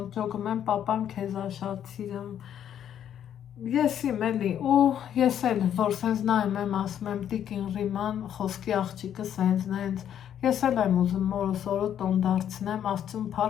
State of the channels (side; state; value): right; quieter; 9.8 dB